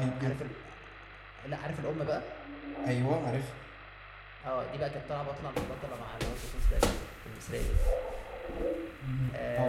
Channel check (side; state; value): both; identical; correlation 1.00